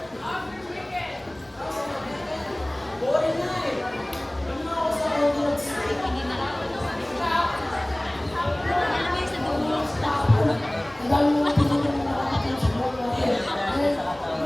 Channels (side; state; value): left; noise; rumble, 30 dB below the sound